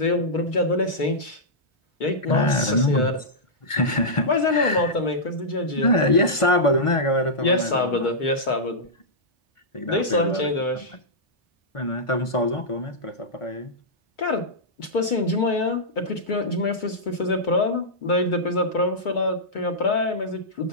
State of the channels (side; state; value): right; late; 1.5 ms